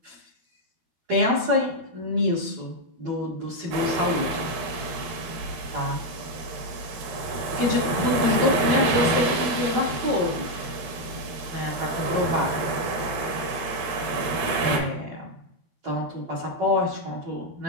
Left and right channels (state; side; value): late; left; 13 ms